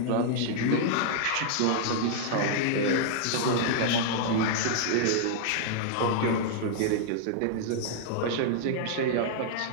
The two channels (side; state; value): both; different; correlation -0.01